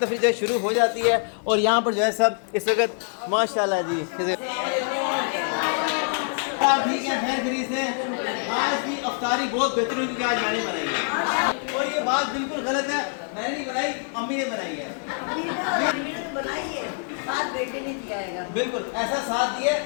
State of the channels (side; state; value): right; silent; 56 dB below the other